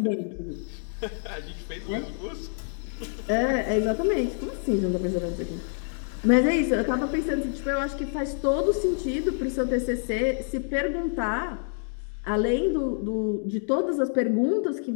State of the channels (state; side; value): silent; right; digital silence